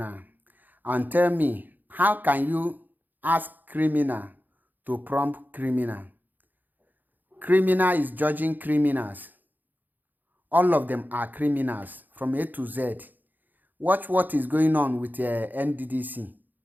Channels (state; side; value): late; left; 0.086 ms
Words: and tell me, how can you ask criminal to prompt criminal? Criminal is judging criminals. All of them are criminals from A to Z. Watch what is going on with NDDC.